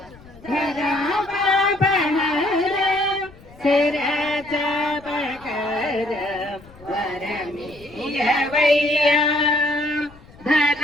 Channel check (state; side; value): noise; left; rumble, 23 dB below the sound